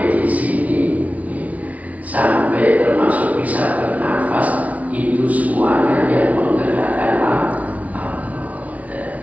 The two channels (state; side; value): late; left; 0.069 ms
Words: di sini, sampai termasuk bisa bernafas, itu semuanya yang menggerakkan Allah.